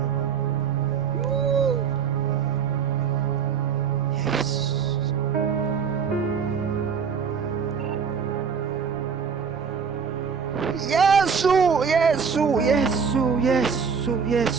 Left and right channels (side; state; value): left; quieter; 6.4 dB